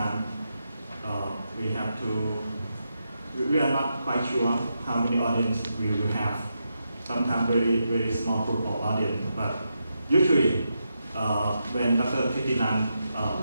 we are not quite sure how many audience we will have. Sometimes very, very small group of audience, but usually when Dr. Thitinan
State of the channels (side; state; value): both; inverted; correlation -0.85